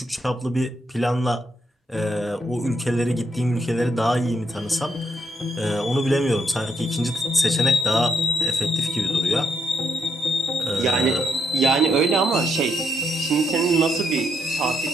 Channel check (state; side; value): normal; both; correlation 0.76